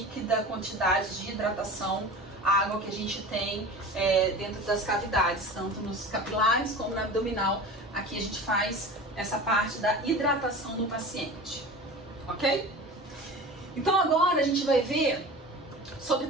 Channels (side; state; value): both; normal; correlation 0.35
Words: quantidade de hidratação, a água que a gente tem dentro das cavidades, tanto nos capilares como na abdominal. Aqui a gente faz essa parte da hidratação do paciente, ok? Então agora a gente vai ver sobre